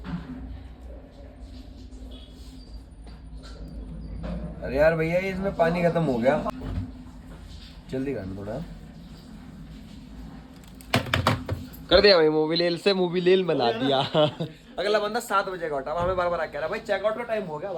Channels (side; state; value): both; identical; correlation 1.00